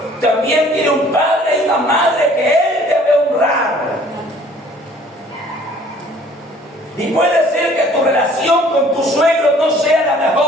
también tiene un padre y una madre que él debe honrar. Y puede ser que tu relación con tu suegro no sea la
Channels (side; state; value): both; normal; correlation 0.55